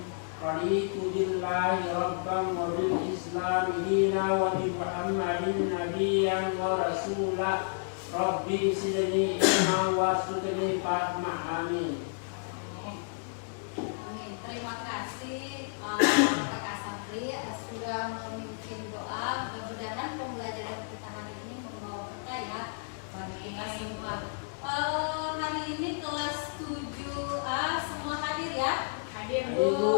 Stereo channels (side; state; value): right; silent; digital silence